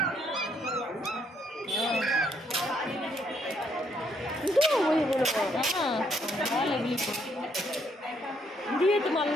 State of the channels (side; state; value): both; normal; correlation 0.71